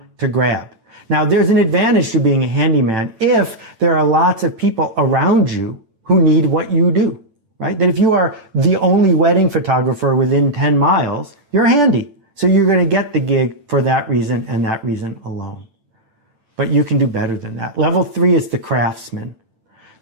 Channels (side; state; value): left; late; 9.0 ms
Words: to grab. Now, there's an advantage to being a handyman if there are lots of people around you who need what you do, right? That if you are the only wedding photographer within 10 miles, you're handy. So you're going to get the gig for that reason and that reason alone. But you can do better than that. Level 3 is the craftsman.